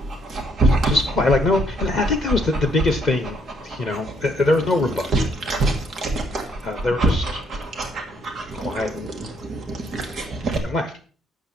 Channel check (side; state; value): both; normal; correlation 0.70